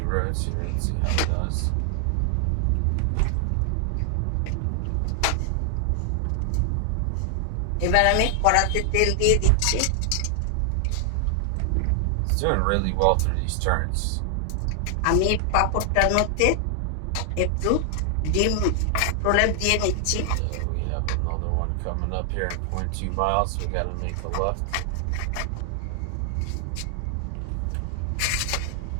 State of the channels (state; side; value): different; both; correlation 0.00